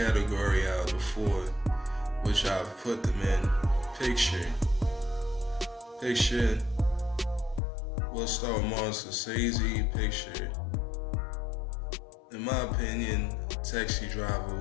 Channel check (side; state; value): right; drops out; at 7.6 s